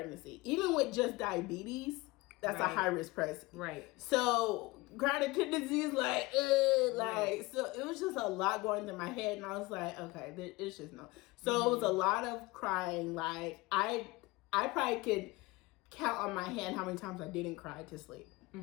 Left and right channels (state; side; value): quieter; right; 22.0 dB